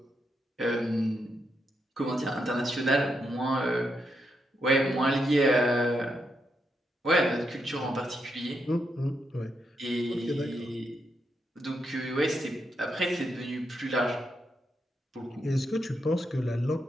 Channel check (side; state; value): both; normal; correlation 0.82